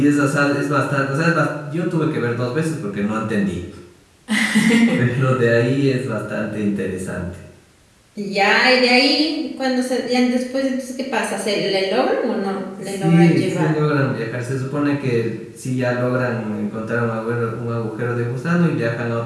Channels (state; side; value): identical; both; correlation 1.00